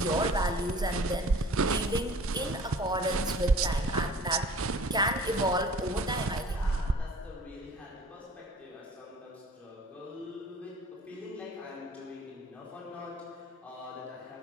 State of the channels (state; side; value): normal; both; correlation 0.47